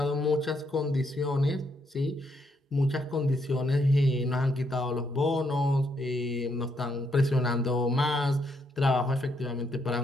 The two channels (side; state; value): both; normal; correlation 0.76